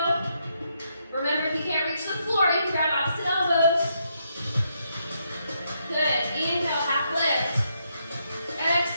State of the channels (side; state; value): both; inverted; correlation -0.78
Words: Remember, if you can't reach the floor, you can grab opposite elbows. Good. Inhale, half lift.